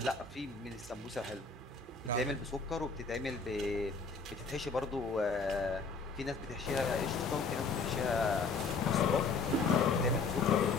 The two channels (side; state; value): right; quieter; 4.3 dB